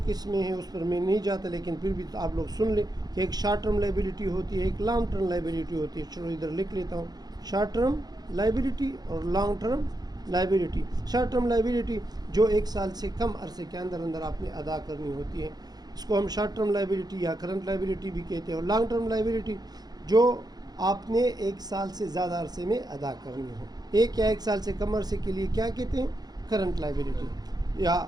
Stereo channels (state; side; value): late; left; 0.19 ms